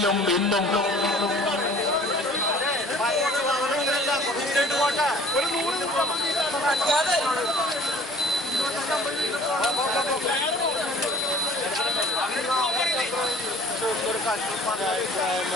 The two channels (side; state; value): both; normal; correlation 0.50